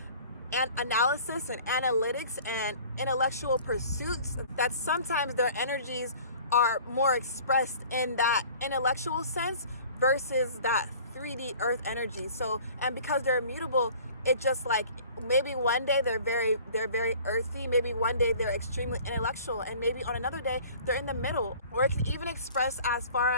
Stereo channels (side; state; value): both; inverted; correlation -0.48